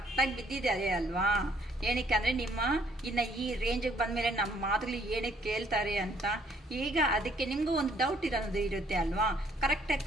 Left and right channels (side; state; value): both; normal; correlation 0.64